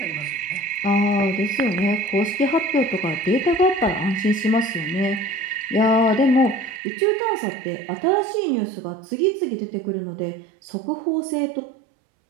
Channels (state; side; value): drops out; left; at 6.8 s